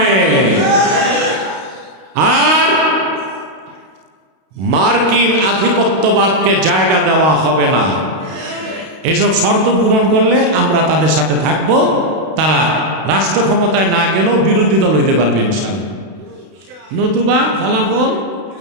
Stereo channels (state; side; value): late; left; 32 ms